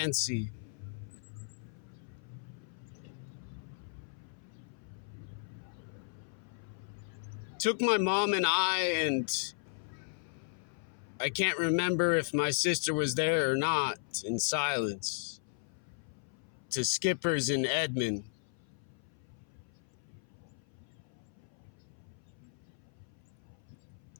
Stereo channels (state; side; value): silent; right; 54 dB below the other